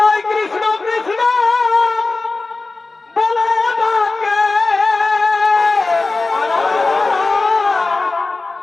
কৃষ্ণ কৃষ্ণ বলে ডাকে,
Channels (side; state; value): right; quieter; 3.6 dB